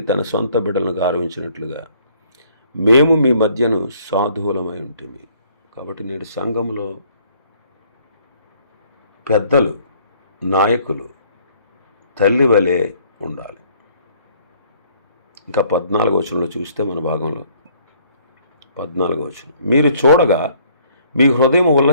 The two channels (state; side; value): inverted; both; correlation -0.62